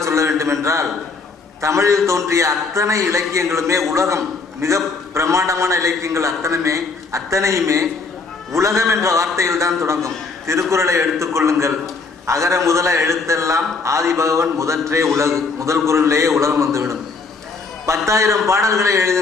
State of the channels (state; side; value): quieter; right; 4.3 dB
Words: சொல்ல வேண்டும் என்றால், தமிழில் தோன்றிய அத்தனை இலக்கியங்களுமே உலகம், மிக பிரம்மாண்டமான இலக்கியங்கள் அத்தனையுமே உலகம் என்ற வார்த்தையில் தான் தொடங்கும். திருக்குறளை எடுத்துக்கொள்ளுங்கள், அகர முதல எழுத்தெல்லாம் ஆதிபகவன் முதற்றே உலகு, முதல் குறளிலேயே உலகம் வந்துவிடும். 10,000 பாடல்களை